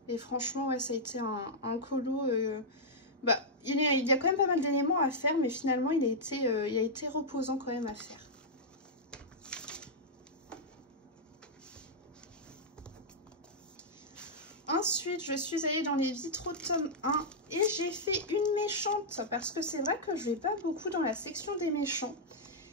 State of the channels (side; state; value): both; normal; correlation -0.07